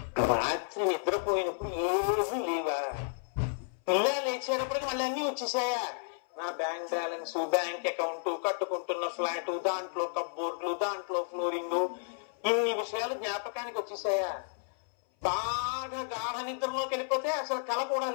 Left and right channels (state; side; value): silent; right; 56 dB below the other